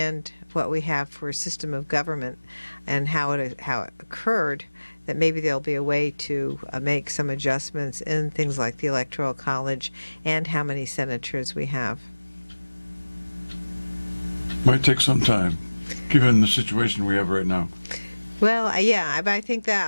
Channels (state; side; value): inverted; both; correlation -1.00